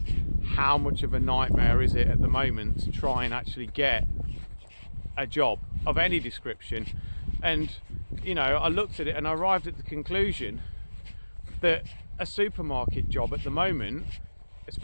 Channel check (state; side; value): inverted; both; correlation -1.00